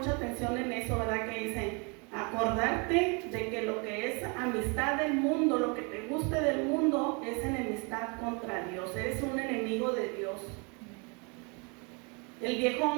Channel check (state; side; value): quieter; left; 32.8 dB